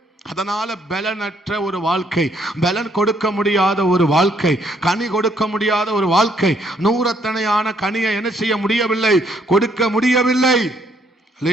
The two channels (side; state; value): both; normal; correlation 0.69